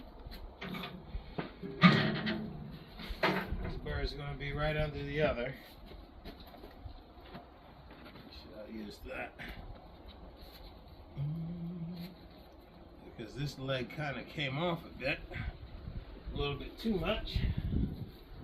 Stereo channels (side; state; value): both; identical; correlation 1.00